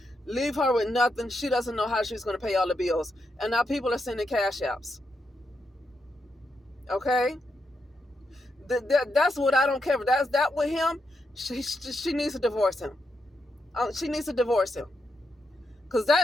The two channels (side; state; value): both; normal; correlation 0.83